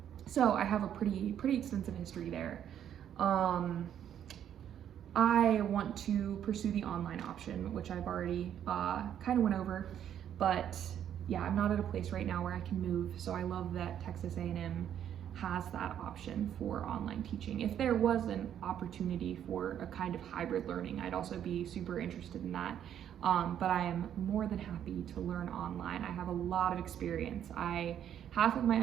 So I have a pretty extensive history there. I want to pursue the online option, which I've already kind of went over, but yeah, I'm not at a place right now where I can move, so I love that Texas A&M has that option for online teaching. If there was an opportunity for a kind of hybrid learning, I'd also be super interested in that. But I am more than happy to learn online. I have a lot of experience. Half of my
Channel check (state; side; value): quieter; left; 9.8 dB